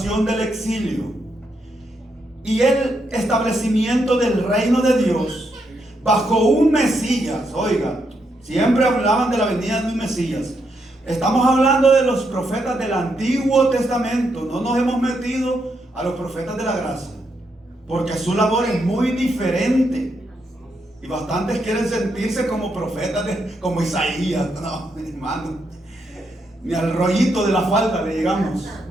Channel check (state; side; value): normal; both; correlation 0.80